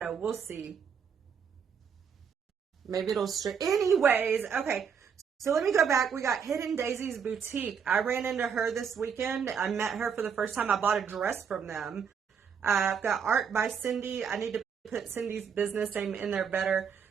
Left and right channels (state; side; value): quieter; left; 6.8 dB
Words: know. We'll see. Maybe it'll straight. Anyways, okay. So let me go back. We got Hidden Daisy's Boutique. I ran into her this weekend. I met her for the first time. I bought a dress from them. I've got Art by Cindy. I need to put Cindy's business name in there better.